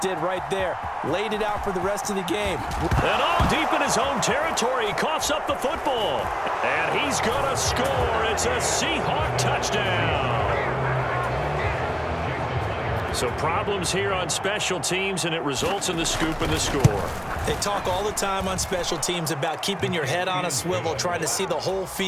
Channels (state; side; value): identical; both; correlation 1.00